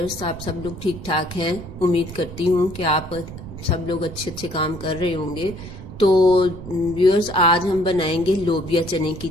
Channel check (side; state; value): right; noise; rumble, 12 dB below the sound